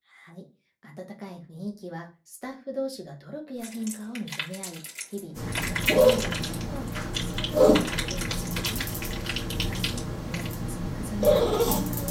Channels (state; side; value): identical; both; correlation 1.00